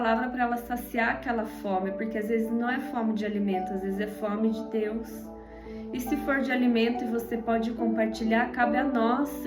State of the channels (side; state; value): both; identical; correlation 1.00